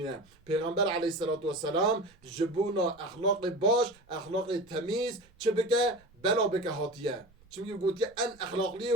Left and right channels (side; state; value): right; noise; rumble, 29 dB below the sound